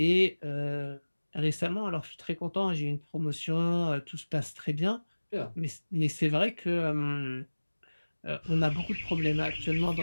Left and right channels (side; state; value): both; inverted; correlation -1.00